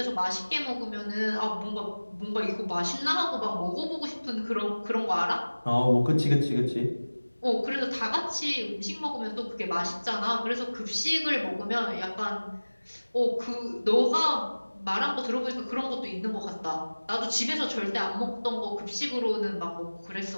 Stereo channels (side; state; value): both; inverted; correlation -1.00